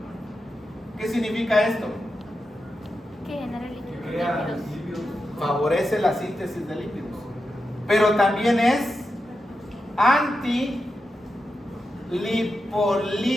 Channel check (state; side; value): normal; both; correlation 0.89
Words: ¿Qué significa esto? Que genera lípidos. Favorece la síntesis de lípidos, pero también es